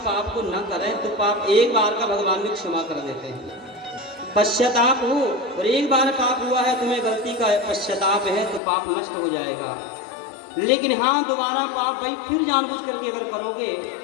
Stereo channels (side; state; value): right; drops out; at 8.6 s